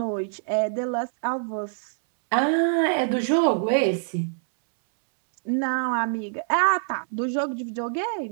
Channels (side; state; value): left; silent; 62 dB below the other